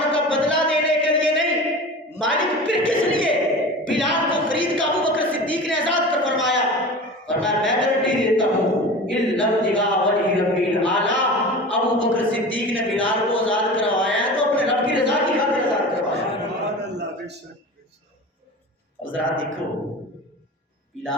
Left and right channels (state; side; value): normal; both; correlation 0.34